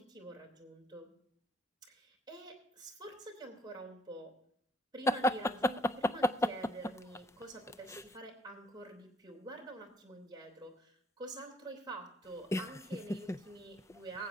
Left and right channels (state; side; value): normal; both; correlation 0.63